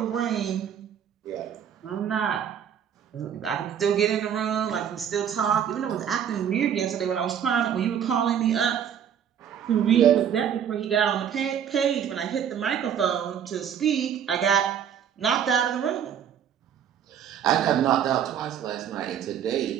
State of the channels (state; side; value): quieter; left; 8.8 dB